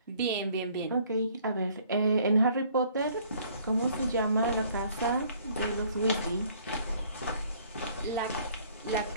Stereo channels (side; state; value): both; inverted; correlation -0.59